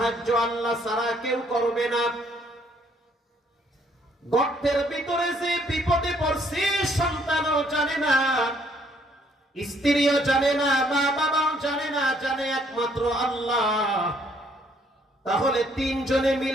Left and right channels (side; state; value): both; normal; correlation 0.66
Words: আল্লাহ ছাড়া কেউ করবে না। গর্তের ভিতরে যে বিপদে পড়ছে সন্তানও জানে না, স্ত্রীও জানে না, মা বাবাও জানে না, জানে একমাত্র আল্লাহ। তাহলে তিনজনে